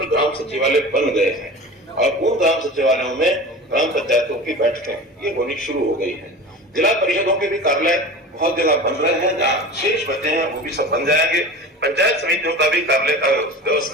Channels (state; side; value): normal; both; correlation 0.34